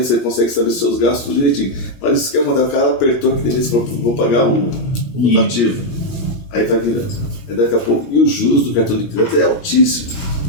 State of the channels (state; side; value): late; right; 17 ms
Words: você consegue saber seus gastos direitinho. Mas isso que é mandar, o cara apertou aqui dentro e falou, vou pagar o rotativo. Aí vai virando. Aí daqui a pouco, e os juros do cartão de crédito é altíssimo.